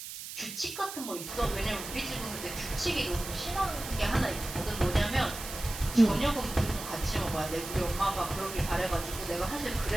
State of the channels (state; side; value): noise; right; hiss, 9 dB below the sound